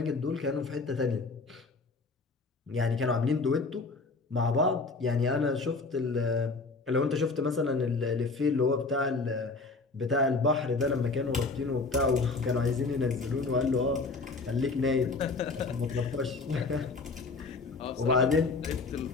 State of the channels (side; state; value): right; quieter; 3.8 dB